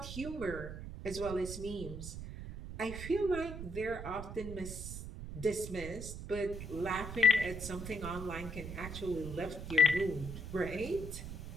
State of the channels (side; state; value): right; noise; rumble, 8 dB below the sound